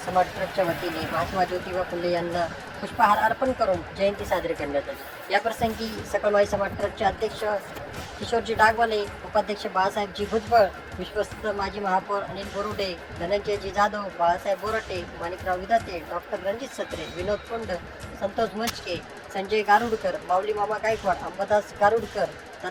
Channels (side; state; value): both; identical; correlation 1.00